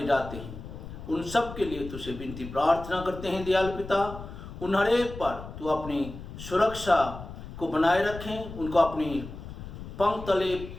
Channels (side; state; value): left; noise; rumble, 11 dB below the sound